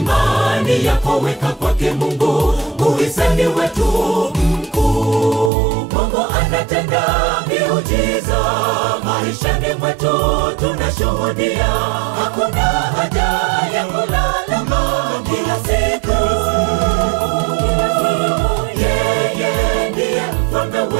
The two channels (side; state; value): left; drops out; at 5.5 s